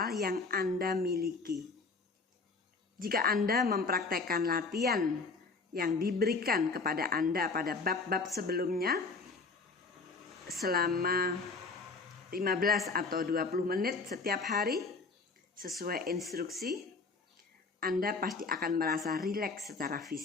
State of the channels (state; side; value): quieter; right; 4.1 dB